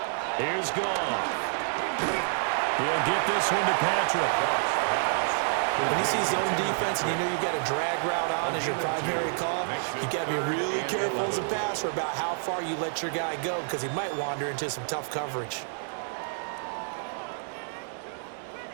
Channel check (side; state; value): left; silent; 59 dB below the other